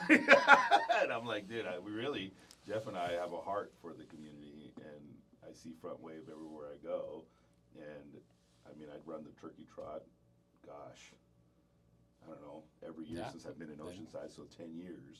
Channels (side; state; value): both; identical; correlation 1.00